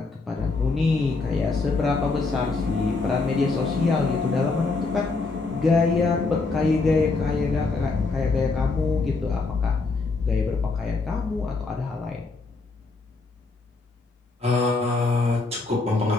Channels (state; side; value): quieter; right; 3.8 dB